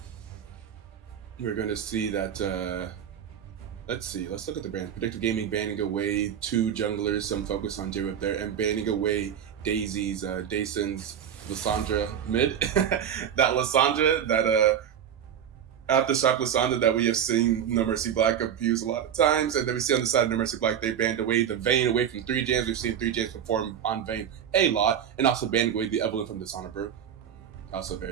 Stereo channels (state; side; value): quieter; left; 9.0 dB